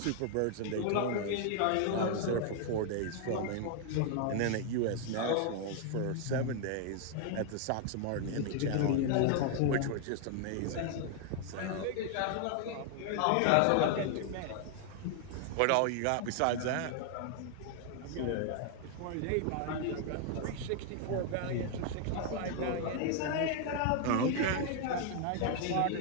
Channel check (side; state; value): both; different; correlation 0.00